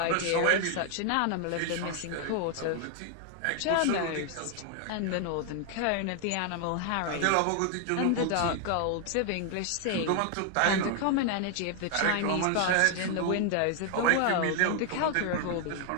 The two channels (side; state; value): both; different; correlation 0.00